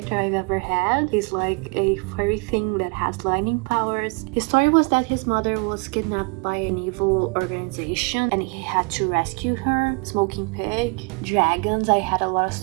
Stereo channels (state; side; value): quieter; left; 31.6 dB